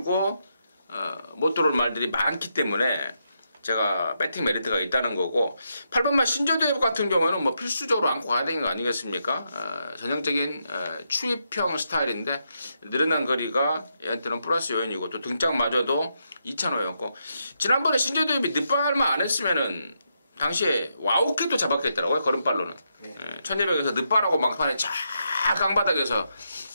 못 들어올 말들이 많기 때문에 제가 배팅 메리트가 있다는 거고, 8번만 신조대회 같은 경우는 필수적으로 안고 가야 되는 거 아니겠습니까? 전형적인 추입형 스타일인데 늘어난 거리가 얘한테는 플러스 요인이고, 또 등짝마저도 2,500였고, 지난번에 신조대회비 늦발만 안 했으면은 당시에 와우캣도 잡았겠더라고요. 걸음발로는 1200에서 늦발하고 막판에 쫙 강바닥에서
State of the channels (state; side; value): inverted; both; correlation -0.81